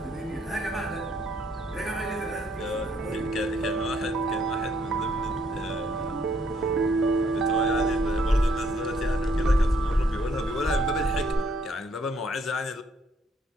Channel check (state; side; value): normal; both; correlation 0.68